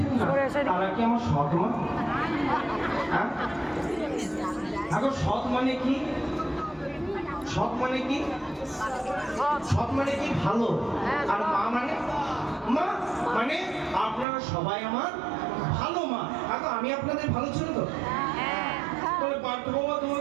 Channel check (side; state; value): left; drops out; at 14.2 s